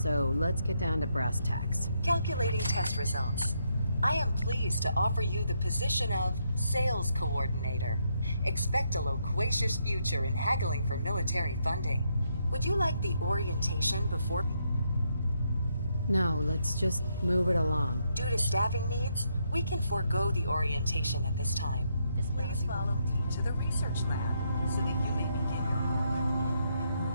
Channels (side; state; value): both; inverted; correlation -0.77